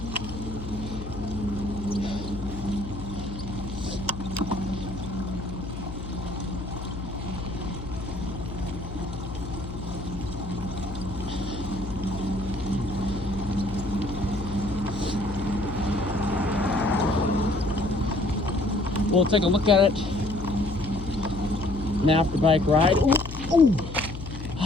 We'll take a look at it. An after bike ride. Ooh, ooh.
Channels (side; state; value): left; noise; hum, 9 dB below the sound